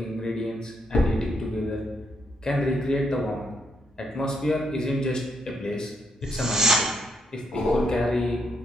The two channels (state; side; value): normal; both; correlation 0.75